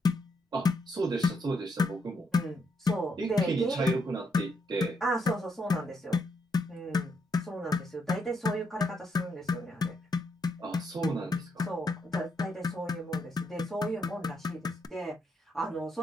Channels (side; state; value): both; normal; correlation 0.77